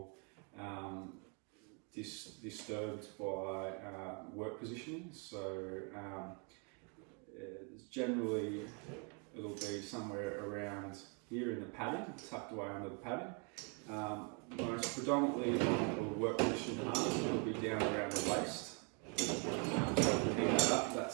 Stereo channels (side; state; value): left; quieter; 36.2 dB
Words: disturbed by work positioning. So generally it'll be somewhere around here in the padding, tucked away under the padding. Most predominantly on the work position harness, it'll be down around the waist. So if you hang that up,